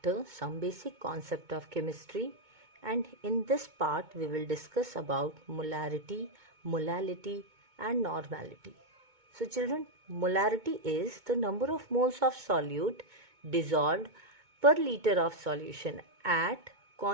some basic concept of chemistry, and in this part we will discuss about molarity, molality and normality. So children, molarity is the number of moles of solute dissolved per liter of solution at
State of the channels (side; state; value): left; late; 2.2 ms